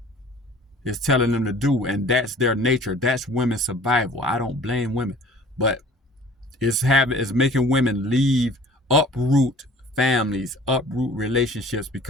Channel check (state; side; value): normal; both; correlation 0.49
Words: telling them to do, and that's their nature. That's women's survival. I don't blame women, but it's making women uproot families, uproot relationships,